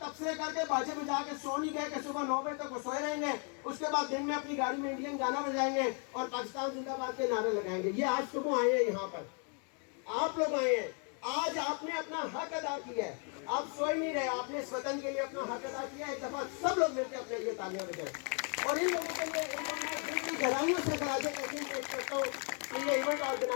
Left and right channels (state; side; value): quieter; right; 39.3 dB